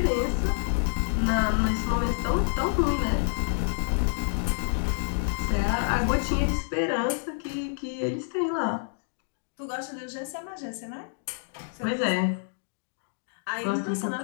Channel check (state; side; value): silent; right; digital silence